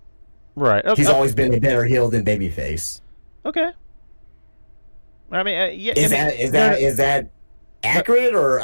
Right. Okay. He's always been a better heel than babyface. Okay. I mean, yeah. Is that accurate or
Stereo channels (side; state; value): both; inverted; correlation -1.00